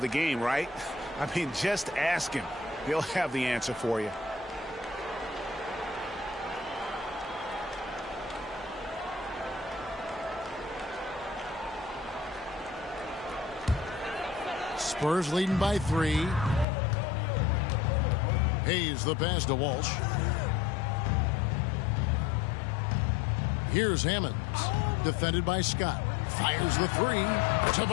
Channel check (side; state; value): right; drops out; at 16.7 s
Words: the game, right? I mean, just ask him. He'll have the answer for you. Spurs leading by 3. Hayes the pass to Walsh. Here's Hammonds, defended by Scott. Fires the 3.